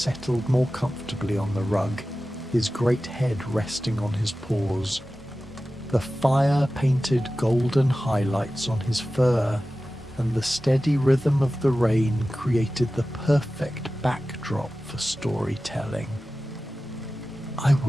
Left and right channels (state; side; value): normal; both; correlation 0.95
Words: more comfortably on the rug, his great head resting on his paws. The fire painted golden highlights on his fur, and the steady rhythm of the rain created the perfect backdrop for storytelling. "I